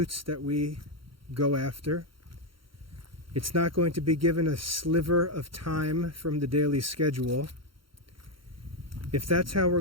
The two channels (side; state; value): left; late; 0.73 ms